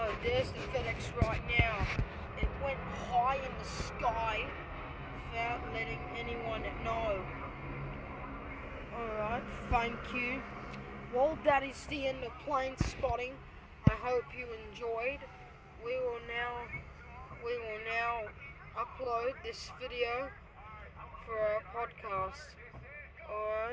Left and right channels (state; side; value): identical; both; correlation 1.00